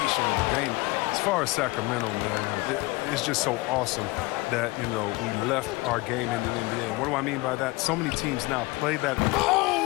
of the game. As far as Sacramento, man, it's just so awesome that we left our game in the NBA. And what do I mean by that? So many teams now play that.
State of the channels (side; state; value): right; quieter; 22.9 dB